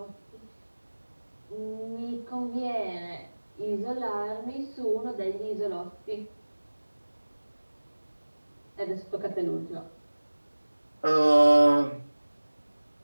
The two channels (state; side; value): inverted; both; correlation -1.00